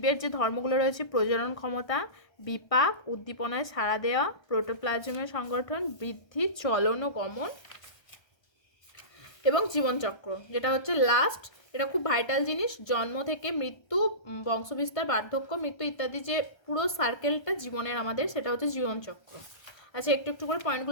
যে ধর্মগুলো রয়েছে, প্রজনন ক্ষমতা, বিপাক, উদ্দীপনায় সাড়া দেওয়া, প্রোটোপ্লাজমের সংগঠন, বৃদ্ধি, চলন ও গমন এবং জীবনচক্র, যেটা হচ্ছে লাস্ট। এটা খুব ভাইটাল জিনিস। জন্ম থেকে মৃত্যু, বংশবিস্তার, বার্ধক্য, মৃত্যু ইত্যাদি যে পুরো সার্কেলটা জীবনের আমাদের, সেটা হচ্ছে জীবনচক্র। আচ্ছা, একটু একটু করে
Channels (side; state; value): right; late; 1.3 ms